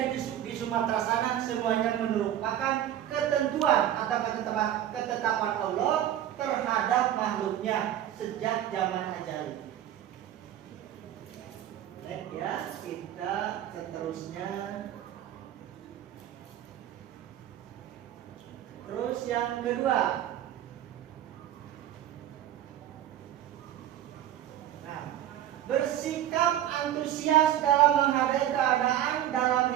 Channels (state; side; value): quieter; left; 11.7 dB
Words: di Sumatera sana, semuanya merupakan ketentuan atau ketetapan Allah terhadap makhluknya sejak zaman ajali. Baik ya, kita seterusnya. Terus yang kedua, bersikap antusias dalam menghadapi keadaan dalam